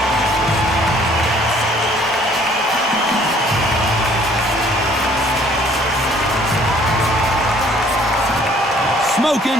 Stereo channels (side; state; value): both; normal; correlation 0.59